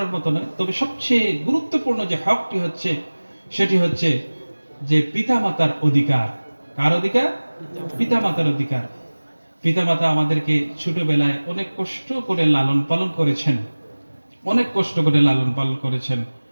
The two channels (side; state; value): both; inverted; correlation -1.00